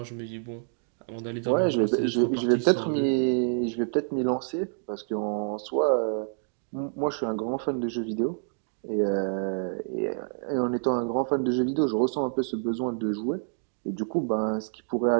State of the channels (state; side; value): silent; left; digital silence